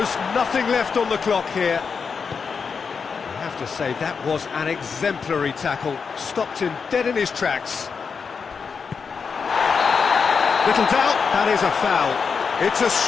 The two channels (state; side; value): quieter; right; 5.7 dB